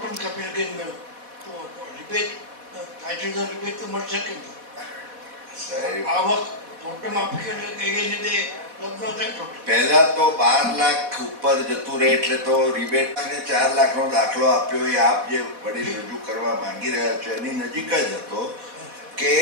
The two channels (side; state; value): left; late; 4.1 ms